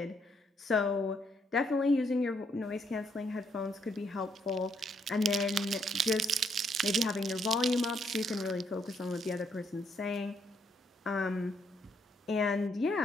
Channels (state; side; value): normal; both; correlation 0.72